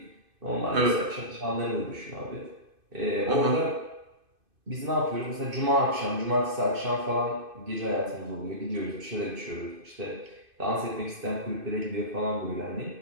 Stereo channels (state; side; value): late; left; 2.5 ms